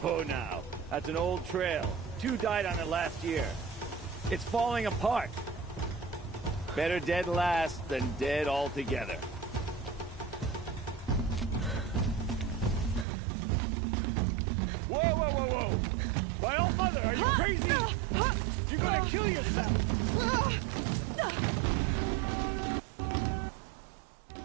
Oh, now. That's an old trail. 2 died on it last year. It's falling apart. Better dead last than dead altogether. Whoa, whoa, whoa, whoa! My old mother, are you crazy? You're gonna kill yourself!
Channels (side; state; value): left; drops out; at 13.1 s